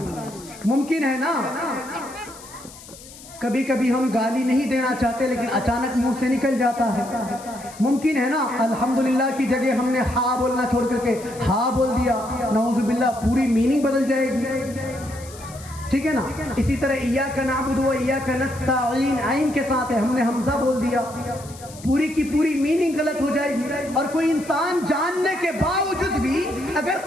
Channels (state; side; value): noise; left; hiss, 18 dB below the sound